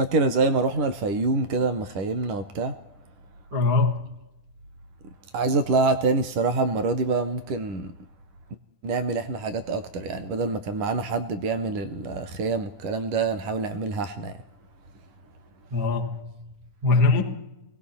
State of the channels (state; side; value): late; left; 10 ms